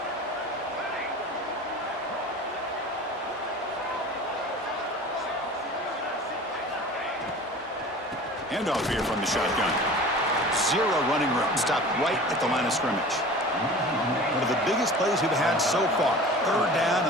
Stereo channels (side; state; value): both; normal; correlation 0.40